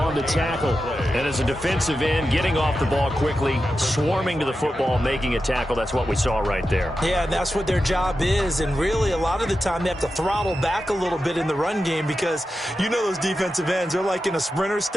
the tackle. And as a defensive end, getting off the ball quickly, swarming to the football, making a tackle. That's what we saw right there. Yeah, and that's what their job is. And really, a lot of the time, they have to throttle back a little bit in the run game because you know those defensive ends, they're like in a sprinter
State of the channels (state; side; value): normal; both; correlation 0.91